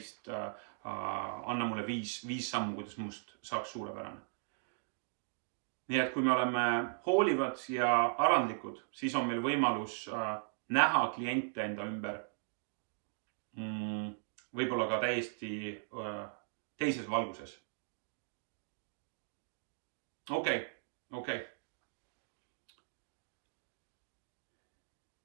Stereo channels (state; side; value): silent; left; digital silence